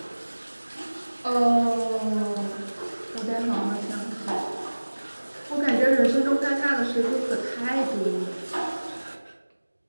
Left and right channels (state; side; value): inverted; both; correlation -1.00